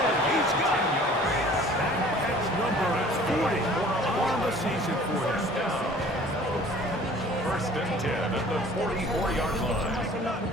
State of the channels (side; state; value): both; normal; correlation 0.50